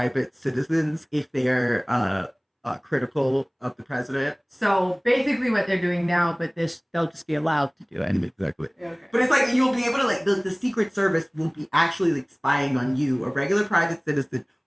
citizens if they're critical of the president. So basically what they're doing now, but they'll just be allowed to do it. Exactly. Okay. But it's like you'll be able to like the Secret Service will be actually like spying on you, a regular private citizen,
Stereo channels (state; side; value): identical; both; correlation 1.00